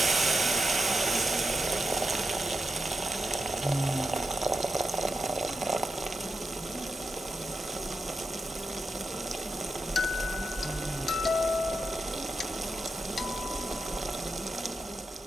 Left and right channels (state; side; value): normal; both; correlation 0.87